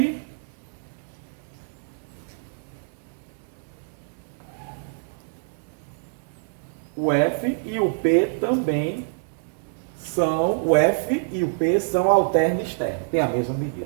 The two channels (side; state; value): left; silent; 61 dB below the other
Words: e o P também são, o F e o P são alterno externo, tem a mesma medida.